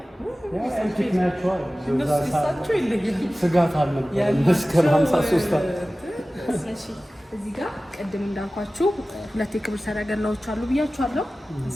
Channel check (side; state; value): both; normal; correlation 0.96